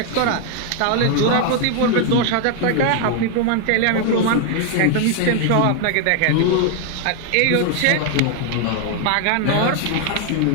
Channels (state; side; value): different; both; correlation 0.00